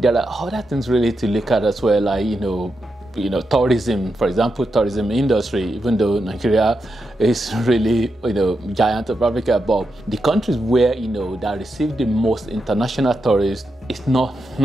are other things really to look at as well, like tourism, for example, tourism industry. Even though Nigeria is really giant of Africa, but the countries where that receive the most international tourists is not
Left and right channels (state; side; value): normal; both; correlation 0.86